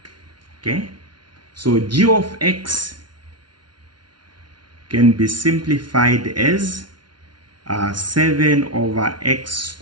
Okay, so g of x can be simplified as 7 over x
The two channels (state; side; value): late; left; 0.71 ms